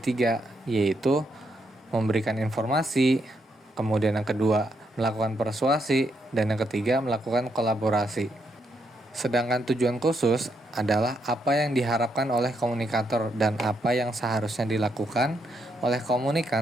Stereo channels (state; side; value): normal; both; correlation 0.78